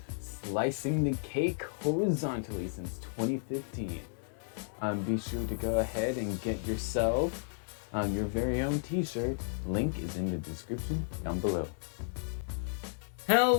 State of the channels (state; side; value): silent; right; digital silence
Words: Slicing the cake horizontally since 2015. Be sure to go ahead and get yourself your very own t-shirt. Link is in the description down below.